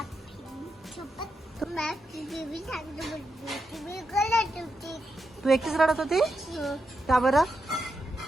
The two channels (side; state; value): both; normal; correlation 0.85